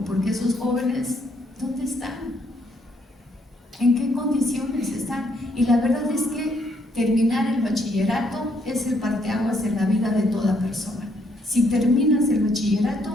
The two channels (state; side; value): normal; both; correlation 0.71